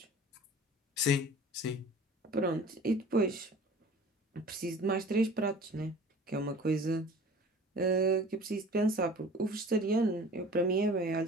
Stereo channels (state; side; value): normal; both; correlation 0.44